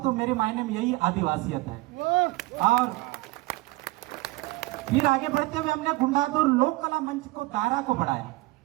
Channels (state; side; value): quieter; left; 20.4 dB